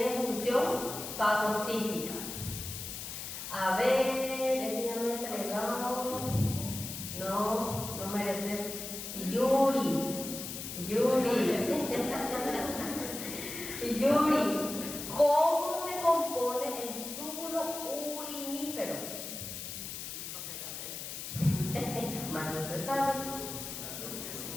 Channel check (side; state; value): left; noise; hiss, 7 dB below the sound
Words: función fagocítica. A ver, este ya me he entregado. No mereces. Yuri. ¿Cómo se compone el túbulo urinífero? Más no se sabe.